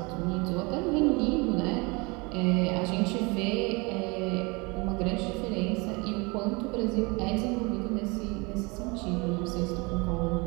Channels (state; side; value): quieter; left; 27.5 dB